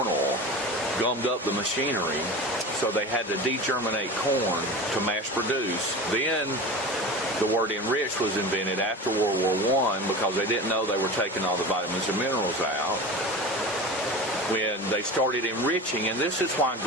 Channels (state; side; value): normal; both; correlation 0.32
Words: oil, gummed up the machinery, so they had to degerminate corn to mass produce. Then the word enriched was invented after World War I because they didn't know they were taking all the vitamins and minerals out. When they started enriching, and this is why